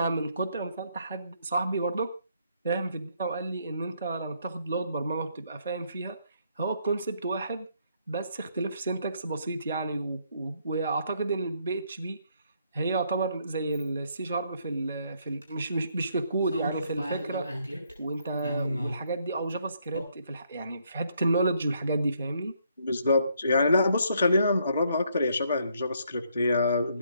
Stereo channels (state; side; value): inverted; both; correlation -0.70